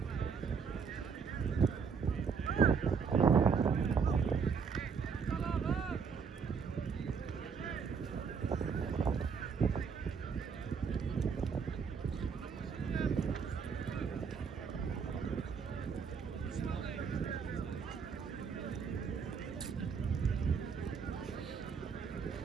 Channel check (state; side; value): quieter; left; 6.0 dB